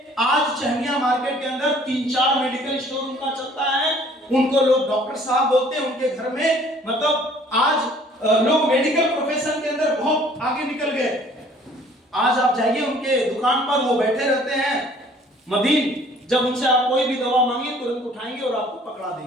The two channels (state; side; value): normal; both; correlation 0.55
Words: आज चहनिया मार्केट के अंदर 3-4 मेडिकल स्टोर उनका चलता है। उनको लोग डॉक्टर साहब बोलते हैं। उनके घर में, मतलब आज लोग मेडिकल प्रोफेशन के अंदर बहुत आगे निकल गए। आज आप जाइए उनके दुकान पर, वो बैठे रहते हैं मदीन। जब उनसे आप कोई भी दवा मांगिए, तुरंत उठाएंगे और आपको पकड़ा